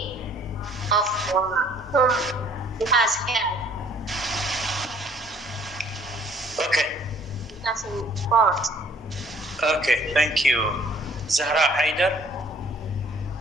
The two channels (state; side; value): normal; both; correlation 0.58